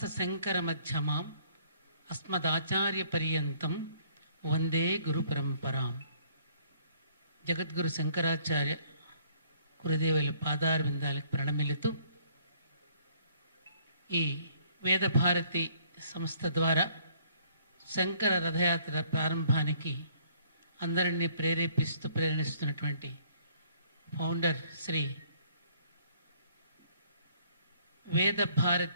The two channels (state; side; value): inverted; both; correlation -0.61